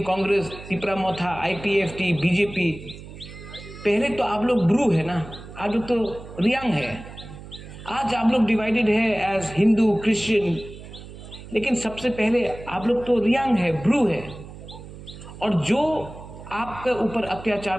कांग्रेस, तिपरा मोथा, IPFT, BJP। पहले तो आप लोग ब्रू है ना, आज लोग तो रियांग है। आज आप लोग डिवाइडेड है एज हिंदू, क्रिश्चियन, लेकिन सबसे पहले आप लोग तो रियांग है, ब्रू है। और जो आपके ऊपर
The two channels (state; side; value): noise; right; hum, 15 dB below the sound